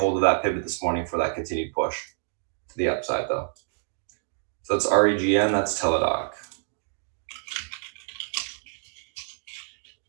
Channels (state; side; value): silent; left; digital silence